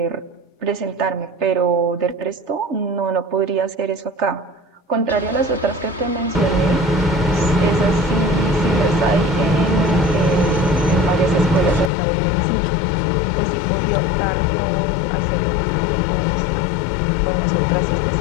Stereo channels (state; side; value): drops out; right; at 11.9 s